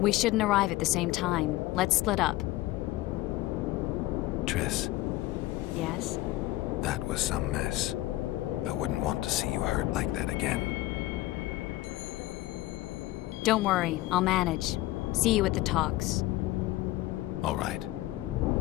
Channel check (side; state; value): right; quieter; 17.6 dB